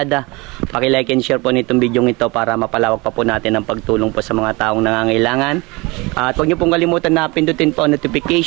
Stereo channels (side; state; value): left; quieter; 25.0 dB